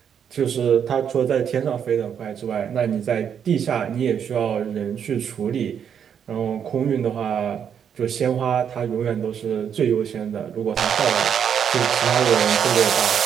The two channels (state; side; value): quieter; left; 8.1 dB